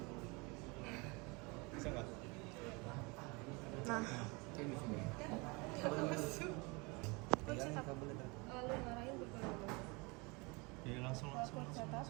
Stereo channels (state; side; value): quieter; left; 28.0 dB